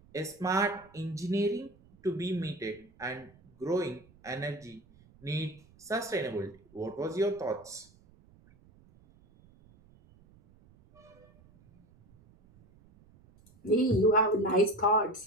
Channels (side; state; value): right; noise; rumble, 27 dB below the sound